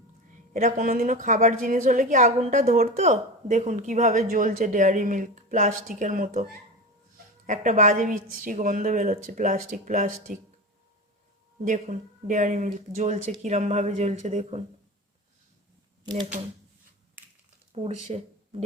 এটা কোনোদিনও খাবার জিনিস হলে কি আগুনটা ধরতো? দেখুন কিভাবে জ্বলছে ডেয়ারি মিল্ক, প্লাস্টিকের মতো। একটা বাজে বিচ্ছিরি গন্ধ বেরোচ্ছে, প্লাস্টিক প্লাস্টিক। দেখুন ডেয়ারি মিল্ক জ্বলছে, কিরমভাবে জ্বলছে দেখুন। দেখুন পুড়ছে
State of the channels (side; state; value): both; normal; correlation 0.26